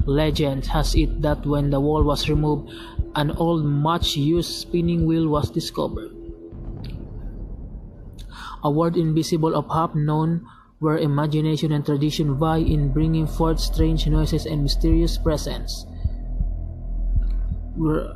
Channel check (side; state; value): both; identical; correlation 1.00